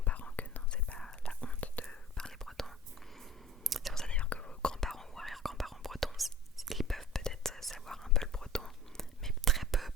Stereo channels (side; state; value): both; normal; correlation 0.44